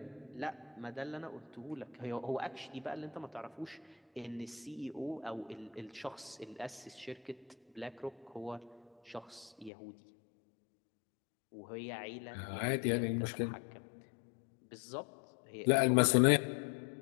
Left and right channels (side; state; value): right; drops out; at 9.7 s